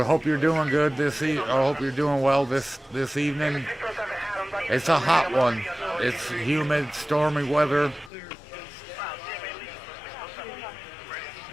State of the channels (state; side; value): drops out; right; at 8.1 s